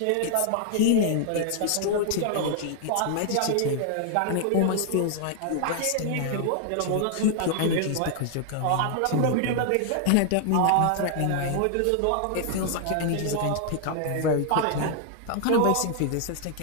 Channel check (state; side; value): different; both; correlation 0.00